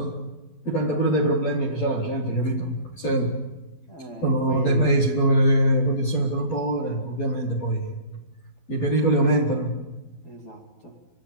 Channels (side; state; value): right; late; 12 ms